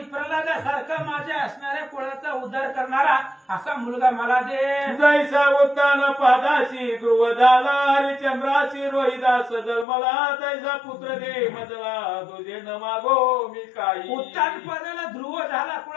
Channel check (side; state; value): right; drops out; at 9.9 s